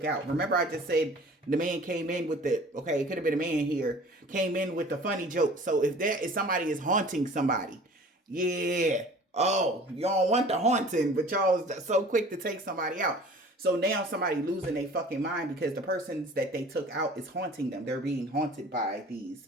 out. Remember, I just said the man came in with the, okay, it could have been a man here, came in with the funny joke. So if somebody is haunting somebody, yeah. Oh, y'all want the haunting, but y'all so quick to take somebody out. So now somebody losing their fucking mind because the persons that they took out is haunting them. They're being haunted by these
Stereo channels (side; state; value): both; normal; correlation 0.46